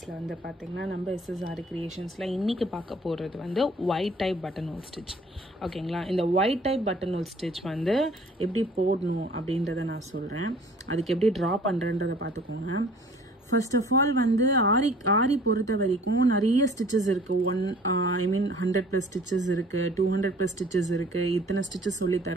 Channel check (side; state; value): both; normal; correlation 0.52